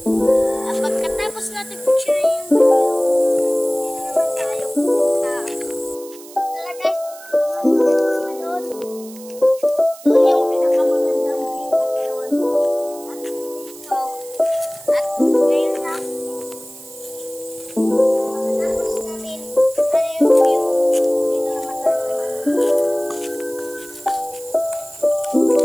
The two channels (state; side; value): noise; right; hiss, 19 dB below the sound